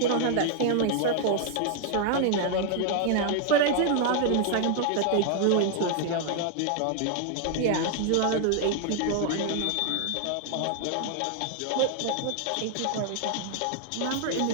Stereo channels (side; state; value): both; different; correlation 0.00